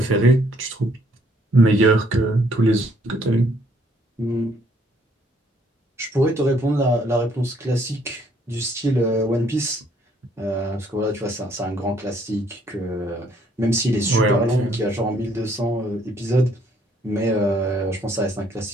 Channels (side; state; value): both; normal; correlation 0.66